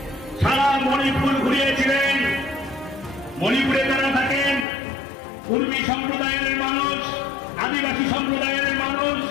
সারা মণিপুর ঘুরিয়েছিলেন। মণিপুরে যারা থাকেন, কুর্মী সম্প্রদায়ের মানুষ, আদিবাসী সম্প্রদায়ের মানুষ,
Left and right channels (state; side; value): drops out; right; at 4.7 s